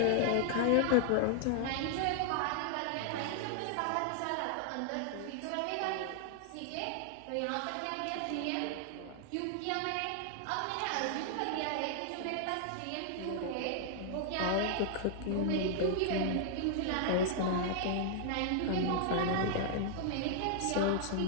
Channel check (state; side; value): different; both; correlation -0.01